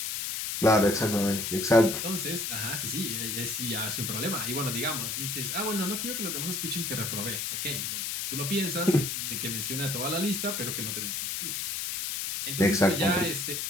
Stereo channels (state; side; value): noise; left; hiss, 2 dB below the sound